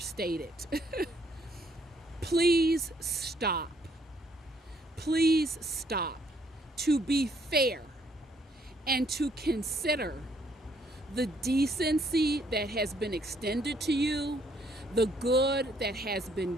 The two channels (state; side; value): normal; both; correlation 0.68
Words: it. Please stop. Please stop to be fair and to consider the decency that has been extended to you, the good that has been